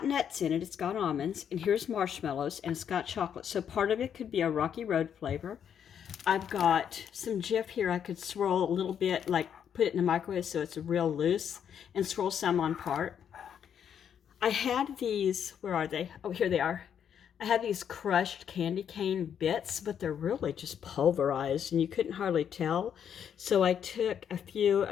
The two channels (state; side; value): quieter; right; 8.5 dB